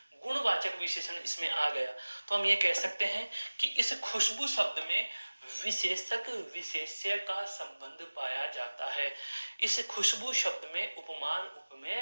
गुणवाचक विशेषण इसमें आ गया। तो हम ये कह सकते हैं कि इस खुशबू शब्द में विशेषक विशेष्य का संबंध पाया जाता है। इस खुशबू शब्द में उपमान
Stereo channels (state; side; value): inverted; both; correlation -1.00